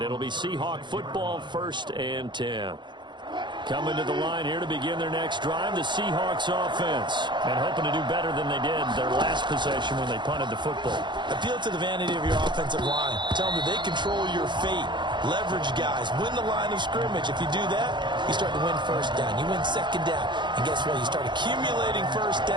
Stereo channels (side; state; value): left; late; 0.22 ms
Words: it'll be Seahawk football, 1st and 10. Coming to the line here to begin their next drive, the Seahawks offense. And hoping to do better than they did their last possession when they punted the football. Appeal to the vanity of your offensive line. Tell them that they control your fate. Leverage guys. Win the line of scrimmage. If you do that, you start to win 1st down. You win 2nd down. And guess what? You start accumulating 1st